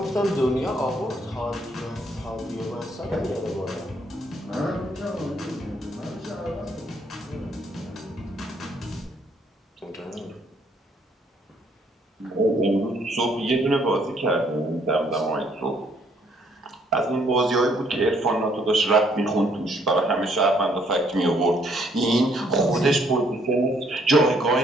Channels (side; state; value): both; normal; correlation 0.67